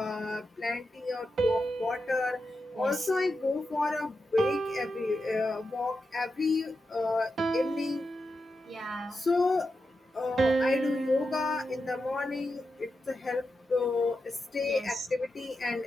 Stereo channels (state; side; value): normal; both; correlation 0.89